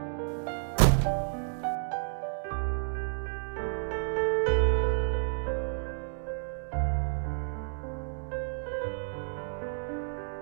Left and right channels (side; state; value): left; silent; digital silence